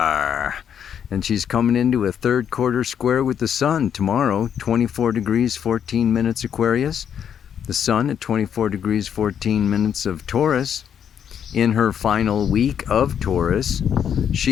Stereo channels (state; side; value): quieter; right; 8.5 dB